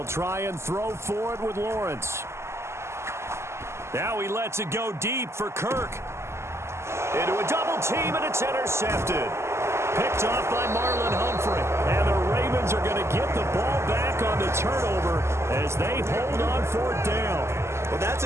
try and throw for it with Lawrence. Now he lets it go deep for Kirk. Into a double team, and it's intercepted. Picked off by Marlon Humphrey. And the Ravens are going to get the ball back on the turnover as they hold on 4th down. Well, that's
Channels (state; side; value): late; left; 0.13 ms